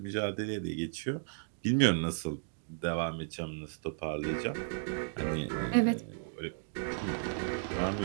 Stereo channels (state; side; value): silent; left; digital silence